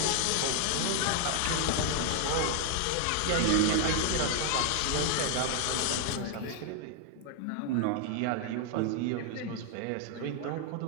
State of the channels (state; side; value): different; both; correlation 0.00